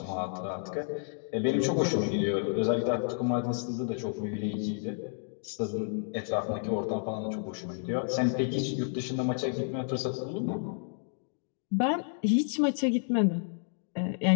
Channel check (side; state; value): right; silent; digital silence